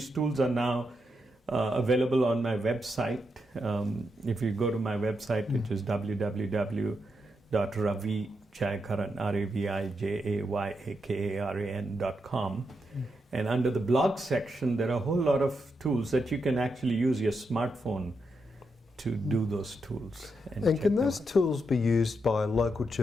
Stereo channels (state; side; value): normal; both; correlation 0.83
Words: tools are now available on my website. If you go to my website, which is www.ravijayakaran, RAVIJAYAKARAN.com, and under the blog section, there are a whole lot of tools that you can actually use your smartphone to do those tools. And can those tools be used by local